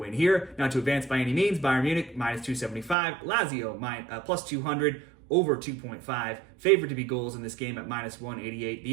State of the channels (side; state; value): left; drops out; at 3.0 s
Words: here. Now, to advance by any means, Bayern Munich -275, Lazio +200, over 2.5. Favored to be goals in this game at -188.